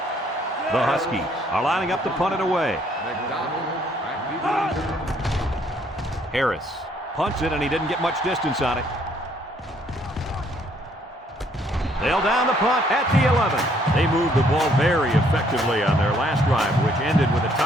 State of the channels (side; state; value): both; normal; correlation 0.66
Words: The Huskies are lining up to punt it away. Harris punts it, and he didn't get much distance on it. They'll down the punt at the 11. They moved the ball very effectively on their last drive, which ended with a